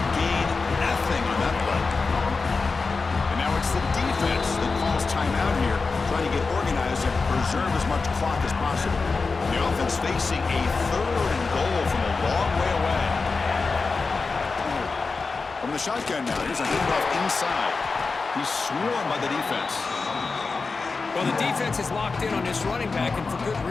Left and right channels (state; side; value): quieter; right; 4.3 dB